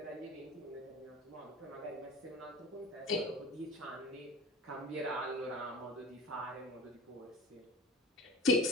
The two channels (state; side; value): normal; both; correlation 0.37